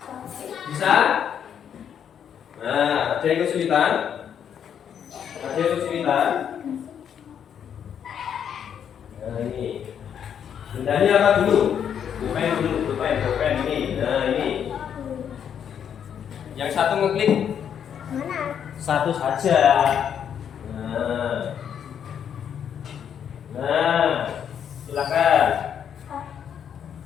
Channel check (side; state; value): right; quieter; 8.5 dB